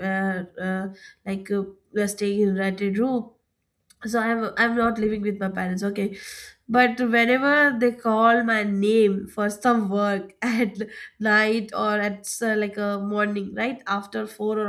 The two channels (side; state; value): both; identical; correlation 1.00